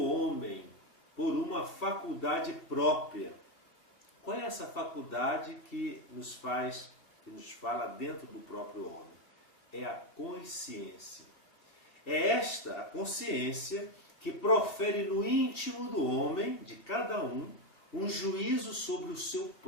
por uma faculdade própria. Qual é essa faculdade que nos fala dentro do próprio homem? É a consciência. É esta a consciência que profere no íntimo do homem, de cada um juízo sobre o seu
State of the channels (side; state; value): right; late; 2.6 ms